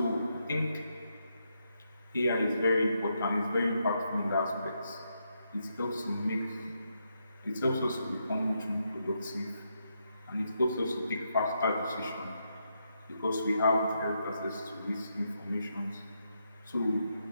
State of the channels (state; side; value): inverted; both; correlation -0.81